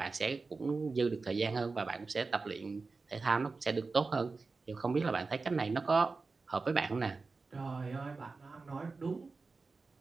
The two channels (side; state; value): left; quieter; 4.1 dB